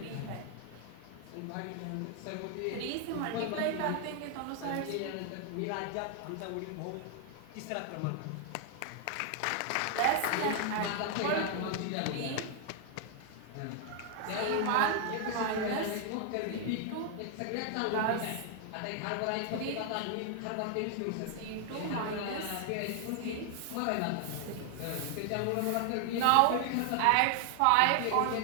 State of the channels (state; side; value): different; both; correlation 0.00